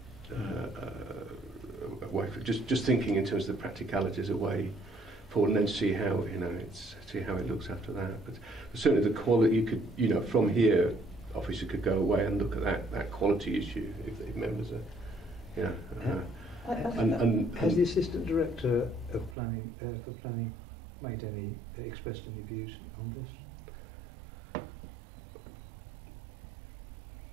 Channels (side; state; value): left; drops out; at 19.4 s